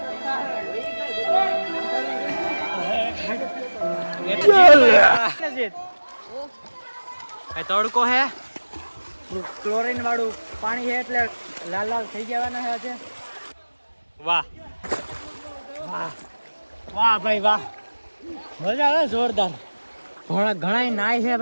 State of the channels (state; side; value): inverted; both; correlation -1.00